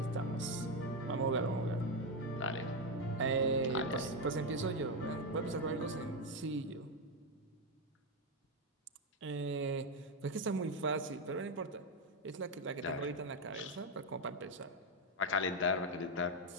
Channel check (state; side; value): normal; both; correlation 0.07